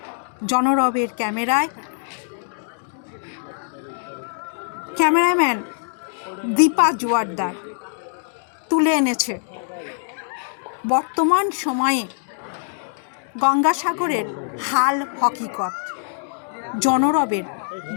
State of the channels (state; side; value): silent; right; digital silence